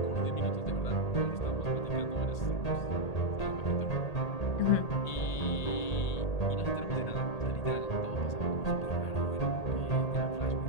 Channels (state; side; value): late; right; 1.8 ms